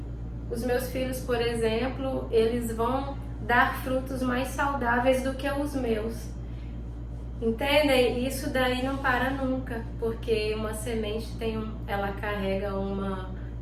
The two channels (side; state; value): both; identical; correlation 1.00